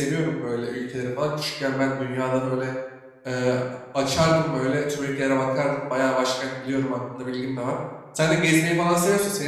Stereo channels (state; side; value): identical; both; correlation 1.00